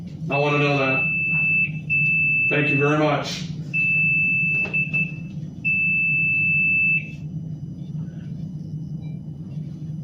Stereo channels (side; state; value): both; identical; correlation 1.00